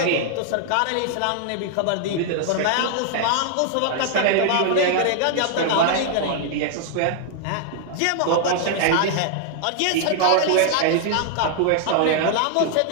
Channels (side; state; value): both; different; correlation -0.01